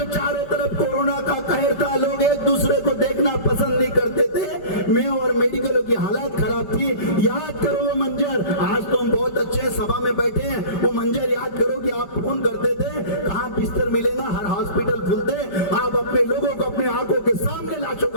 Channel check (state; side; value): late; right; 5.1 ms